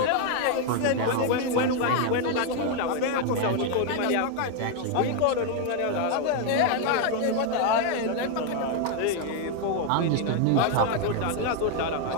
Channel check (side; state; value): both; different; correlation 0.01